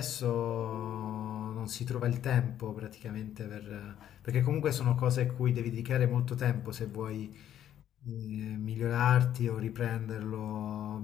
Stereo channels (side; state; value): right; quieter; 10.9 dB